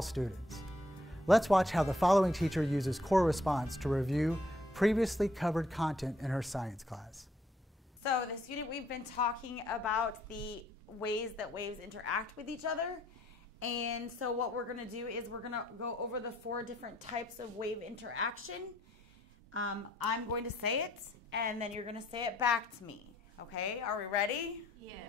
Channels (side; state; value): both; normal; correlation 0.67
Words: students. Let's watch how the following teacher uses choral response to review previously covered content in her science class. So this unit we've been talking about the ways that waves interact with each other. And so what we're going to do is we're going to go over the 4 different types of wave interaction. I'm going to say it, and then you're going to say it back to me. Okay, are we ready?